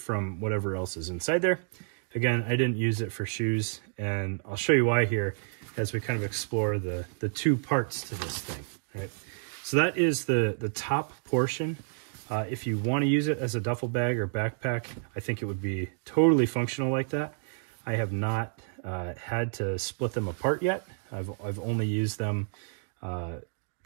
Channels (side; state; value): left; silent; digital silence